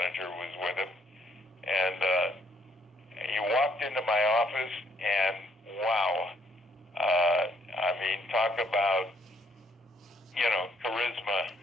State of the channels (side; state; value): both; normal; correlation 0.69